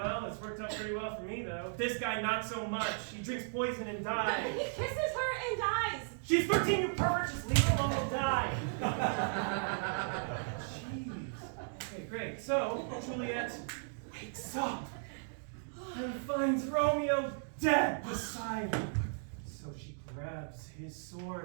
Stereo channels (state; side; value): silent; left; digital silence